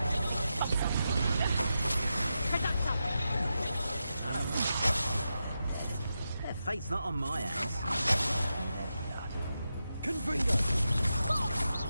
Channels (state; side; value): inverted; both; correlation -0.88